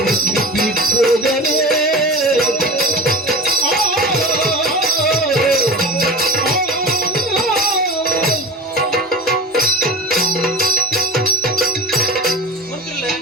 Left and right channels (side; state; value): both; normal; correlation 0.32